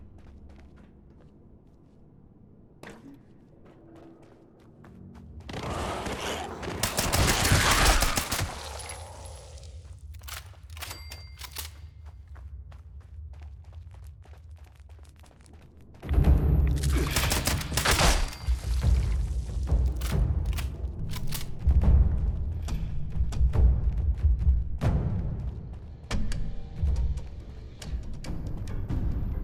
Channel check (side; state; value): both; identical; correlation 1.00